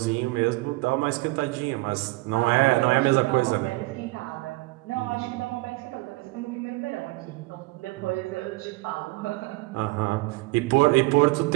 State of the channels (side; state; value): left; quieter; 22.4 dB